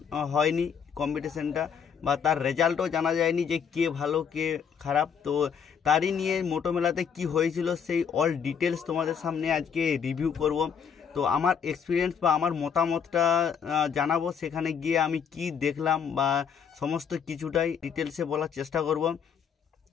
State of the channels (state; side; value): quieter; right; 7.2 dB